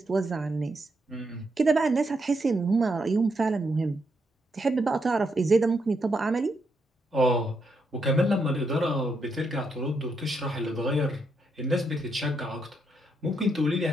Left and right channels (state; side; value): normal; both; correlation 0.79